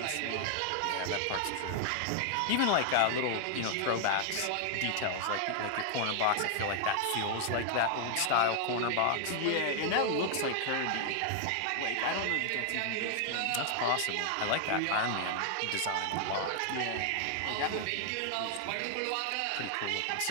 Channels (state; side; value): different; both; correlation 0.00